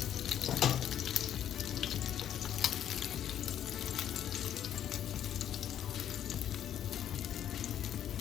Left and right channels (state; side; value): quieter; right; 10.3 dB